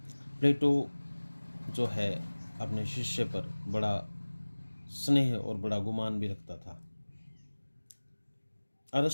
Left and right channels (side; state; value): both; inverted; correlation -1.00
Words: प्लेटो जो है अपने शिष्य पर बड़ा स्नेह और बड़ा गुमान भी रखता था।